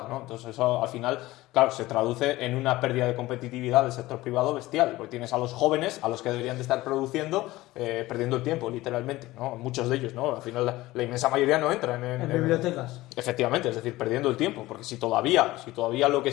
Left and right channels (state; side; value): quieter; right; 18.1 dB